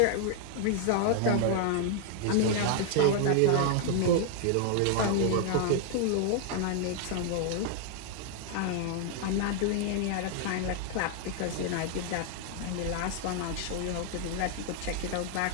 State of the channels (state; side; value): different; both; correlation 0.00